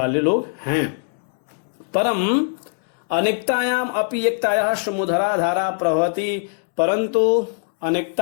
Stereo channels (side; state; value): right; silent; 65 dB below the other